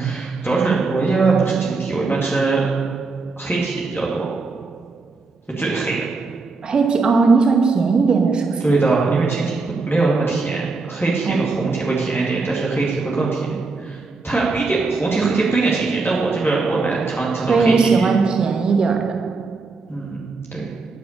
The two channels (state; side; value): quieter; left; 3.9 dB